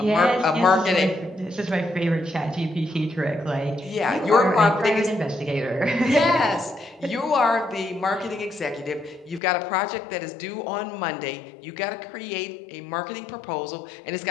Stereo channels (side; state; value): right; drops out; at 9.4 s